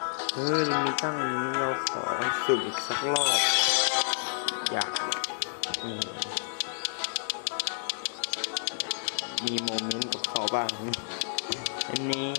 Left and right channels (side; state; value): right; silent; digital silence